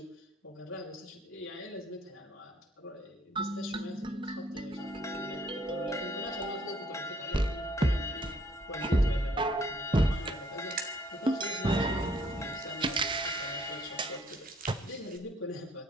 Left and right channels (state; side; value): normal; both; correlation 0.63